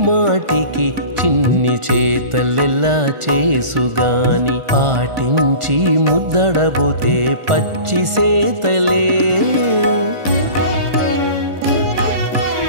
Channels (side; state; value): left; late; 1.4 ms